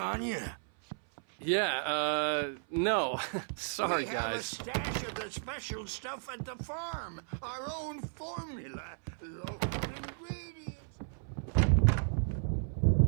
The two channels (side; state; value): left; silent; 55 dB below the other